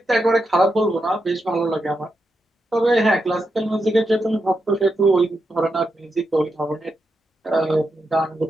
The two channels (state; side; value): normal; both; correlation 0.85